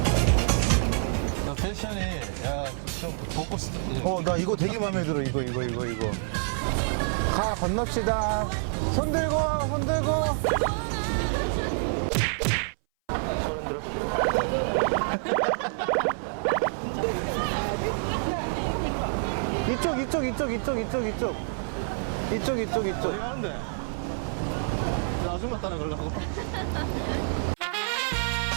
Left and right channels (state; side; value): silent; left; 58 dB below the other